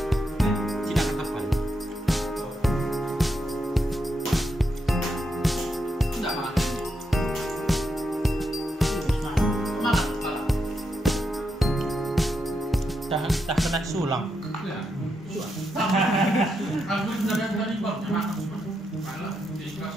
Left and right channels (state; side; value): normal; both; correlation 0.83